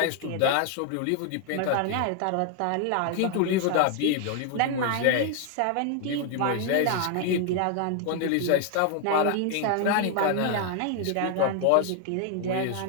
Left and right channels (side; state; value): both; different; correlation 0.00